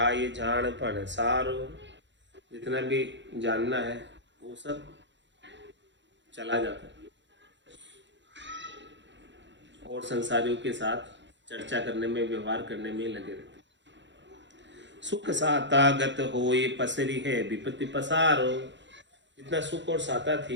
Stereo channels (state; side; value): late; left; 0.53 ms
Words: जानपण सारो। जितना भी जानना है वो सब चला जाता है और संसारियों के साथ चर्चा करने में, व्यवहार करने में लगे रहते। सुख साता गत होय पसरी है विपत्ति पसारो। जितना सुख और साता